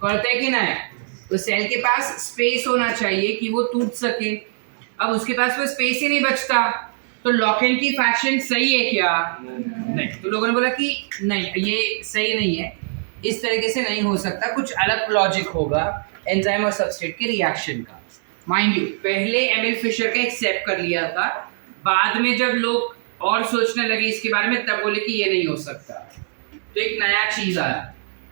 करते कि नहीं? तो सेल के पास स्पेस होना चाहिए कि वो टूट सके। अब उसके पास वो स्पेस ही नहीं बचता तो लॉक एंड की फैक्शन सही है क्या? नहीं। तो लोगों ने बोला कि नहीं, ये सही नहीं है, इस तरीके से नहीं हो सकता, कुछ अलग लॉजिक होगा एंजाइम और सबस्ट्रेट के रिएक्शन का। माइंड यू, पहले एमिल फिशर का एक्सेप्ट कर लिया था, बाद में जब लोग और सोचने लगे इसके बारे में तब बोले कि ये नहीं हो सकता। तो एक नया चीज आया,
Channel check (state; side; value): silent; left; digital silence